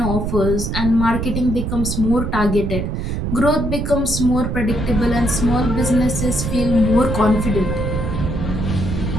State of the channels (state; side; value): noise; right; rumble, 2 dB below the sound